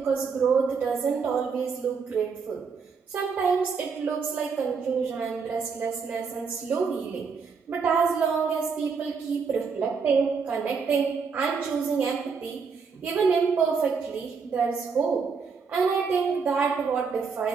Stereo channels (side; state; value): left; quieter; 5.5 dB